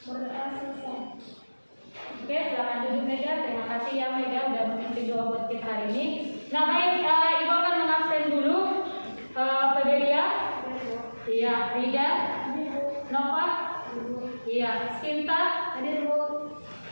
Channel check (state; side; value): inverted; both; correlation -1.00